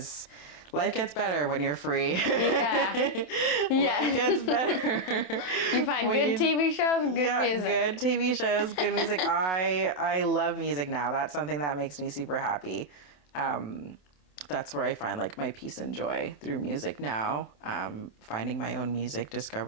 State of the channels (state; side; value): late; right; 27 ms